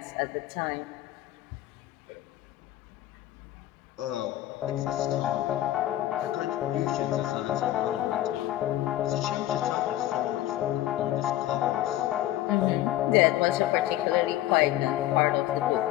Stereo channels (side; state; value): right; quieter; 14.2 dB